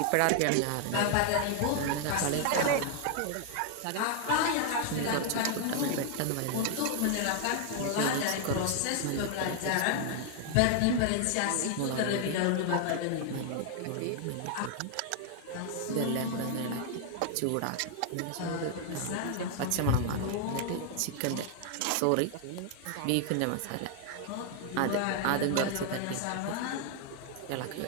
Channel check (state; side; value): different; both; correlation 0.00